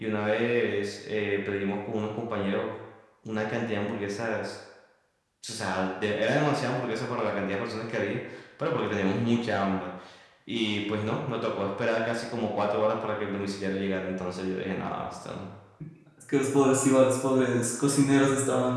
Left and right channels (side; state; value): both; identical; correlation 1.00